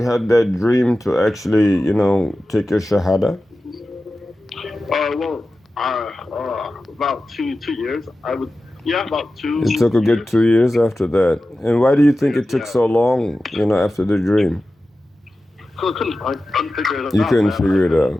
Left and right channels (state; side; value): normal; both; correlation 0.94